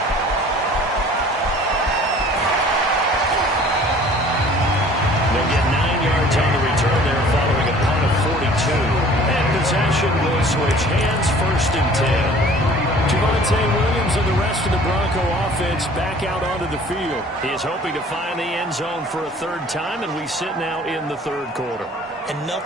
They'll get 9 yards on the return there following a punt of 42. And possession will switch hands, 1st and 10. Javonte Williams and the rest of the Bronco offense back out onto the field. He is hoping to find the end zone for a 3rd time, and we sit now in the 3rd quarter. And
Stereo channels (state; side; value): normal; both; correlation 0.50